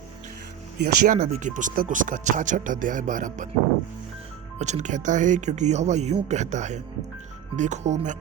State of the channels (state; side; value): quieter; left; 9.8 dB